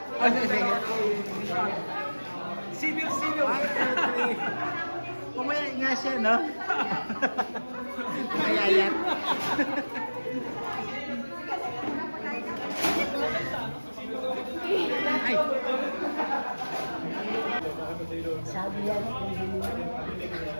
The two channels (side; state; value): both; inverted; correlation -1.00